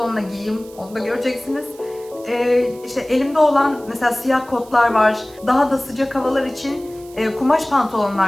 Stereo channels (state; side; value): noise; right; hiss, 23 dB below the sound